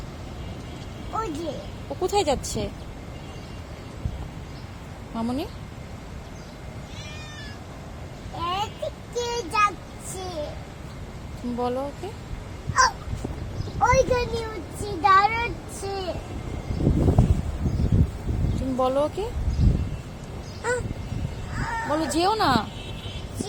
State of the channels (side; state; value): both; identical; correlation 1.00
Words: ওই যে ও কোথায় যাচ্ছে মামুনি? এদিকে যাচ্ছে। তুমি বলো ওকে। ওইখানে হচ্ছে দাঁড়াচ্ছে। তুমি বলো ওকে, বলো যেও না।